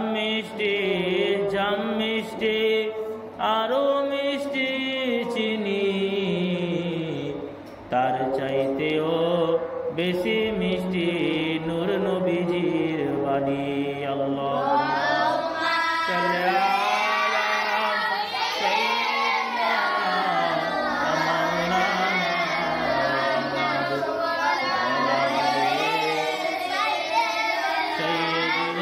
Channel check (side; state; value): both; identical; correlation 1.00